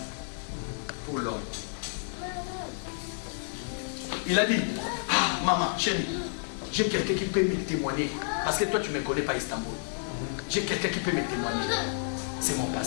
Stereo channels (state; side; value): silent; right; digital silence